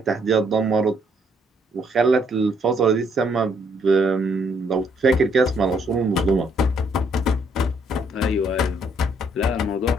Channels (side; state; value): both; normal; correlation 0.69